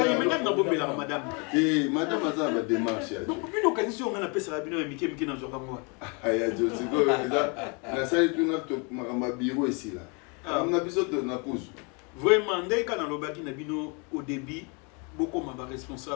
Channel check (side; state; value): right; quieter; 33.2 dB